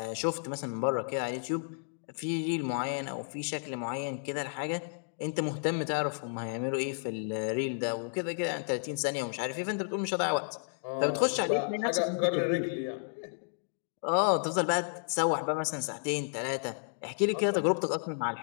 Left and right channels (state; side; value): silent; right; digital silence